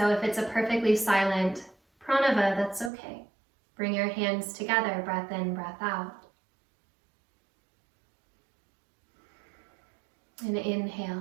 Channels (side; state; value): left; drops out; at 2.9 s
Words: if it's a perfectly silent pranava, that's okay. Bring your hands together, breath in, breath out. And inhale,